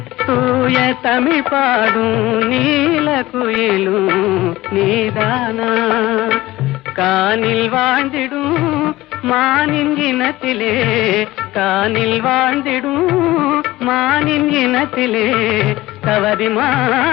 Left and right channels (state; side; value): quieter; right; 17.7 dB